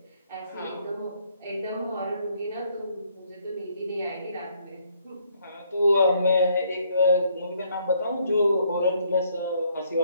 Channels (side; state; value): both; inverted; correlation -0.68